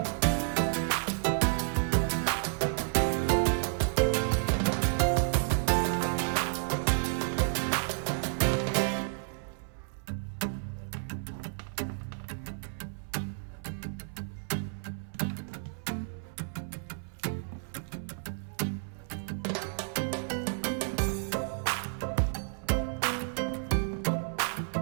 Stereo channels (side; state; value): left; silent; 57 dB below the other